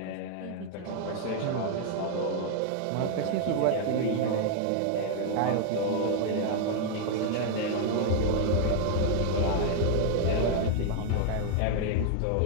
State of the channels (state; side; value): different; both; correlation 0.00